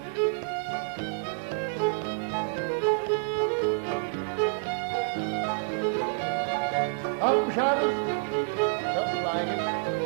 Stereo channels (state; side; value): silent; left; digital silence